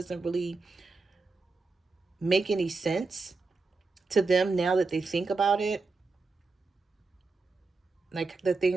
really make any sense to them now that they think about it. Like the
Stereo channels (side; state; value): left; quieter; 3.9 dB